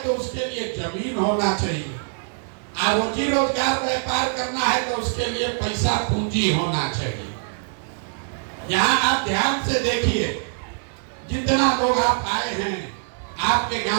तो उसके लिए जमीन होना चाहिए, और रोजी रोजगार व्यापार करना है तो उसके लिए पैसा पूंजी होना चाहिए। यहाँ आप ध्यान से देखिए, जितना लोग आप आए हैं, आपके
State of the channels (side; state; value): left; silent; digital silence